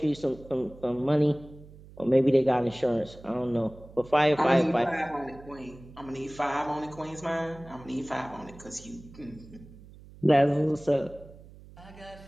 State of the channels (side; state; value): right; noise; hum, 20 dB below the sound